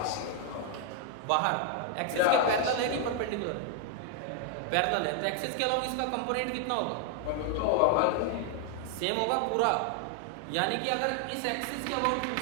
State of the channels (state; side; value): different; both; correlation 0.00